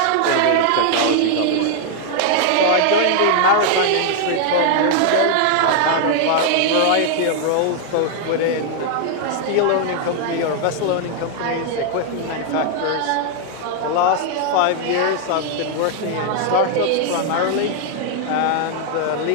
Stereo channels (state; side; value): different; both; correlation 0.00